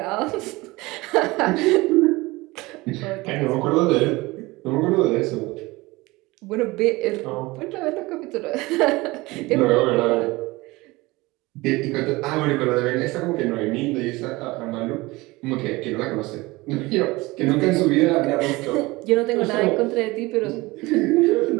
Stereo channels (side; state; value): left; quieter; 21.6 dB